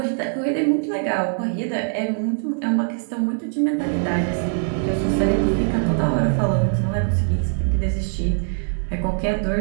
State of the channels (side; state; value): left; silent; digital silence